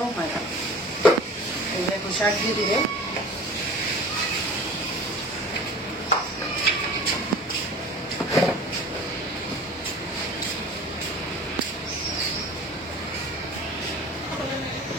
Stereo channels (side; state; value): both; normal; correlation 0.41